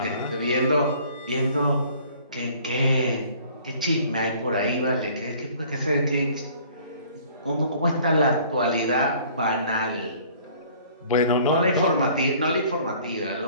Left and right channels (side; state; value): both; inverted; correlation -0.54